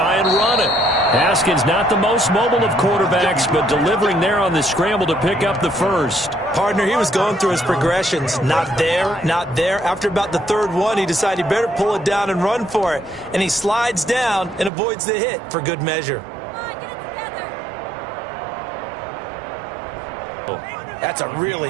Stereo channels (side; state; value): left; drops out; at 14.7 s